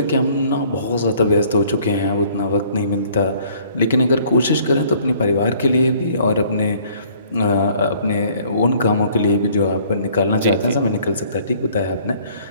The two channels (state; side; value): inverted; both; correlation -0.58